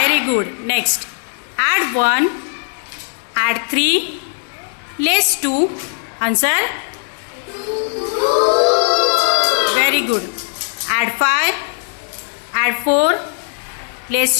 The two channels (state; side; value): silent; right; 57 dB below the other